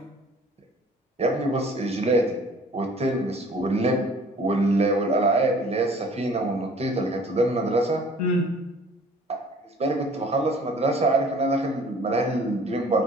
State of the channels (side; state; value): both; normal; correlation 0.51